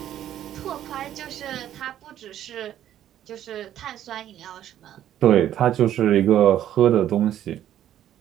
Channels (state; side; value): quieter; left; 11.5 dB